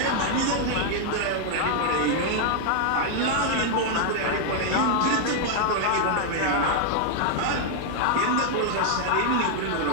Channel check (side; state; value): both; different; correlation 0.00